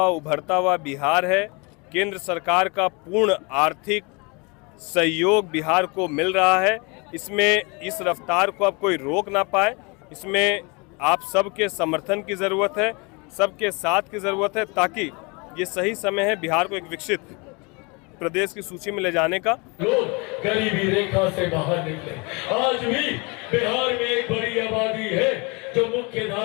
उभरता हुआ बिहार है। केंद्र सरकार का पूर्ण आर्थिक सहयोग बिहार को मिल रहा है। इसमें इस रफ्तार को अब कोई रोक ना पाए। इसमें आप सबके समर्थन की ज़रूरत है, सबके साथ की ज़रूरत है, ताकि ये सही समय है बिहार को एक विकसित प्रदेश की सूची में ले जाने का। लोग गरीबी रेखा से बाहर निकले। आज भी बिहार में एक बड़ी आबादी है जो मुख्य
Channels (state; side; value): quieter; right; 29.5 dB